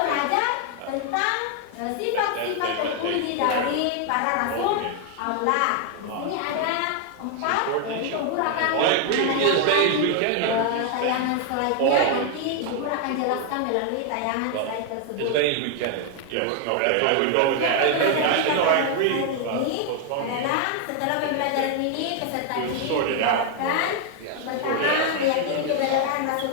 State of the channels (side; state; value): both; different; correlation 0.00